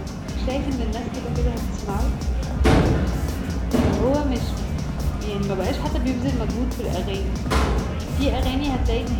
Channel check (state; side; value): identical; both; correlation 1.00